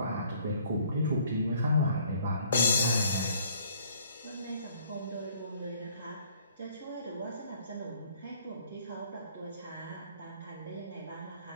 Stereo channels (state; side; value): inverted; both; correlation -0.60